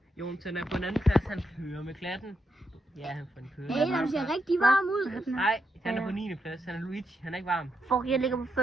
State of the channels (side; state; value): both; normal; correlation 0.82